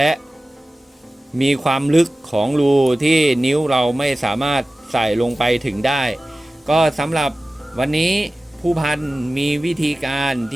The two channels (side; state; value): both; normal; correlation 0.96